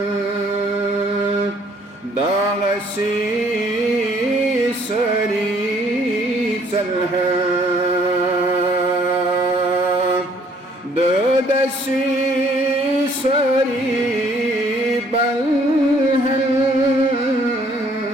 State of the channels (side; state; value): both; normal; correlation 0.62